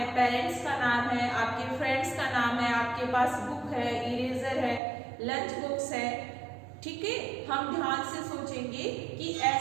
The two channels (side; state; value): left; drops out; at 4.8 s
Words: पेरेंट्स का नाम है, आपके फ्रेंड्स का नाम है, आपके पास बुक है, इरेजर है, लंच बॉक्स है, ठीक है। हम ध्यान से सोचेंगे कि